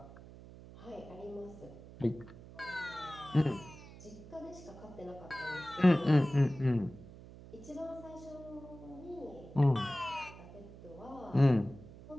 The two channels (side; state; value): right; noise; hum, 17 dB below the sound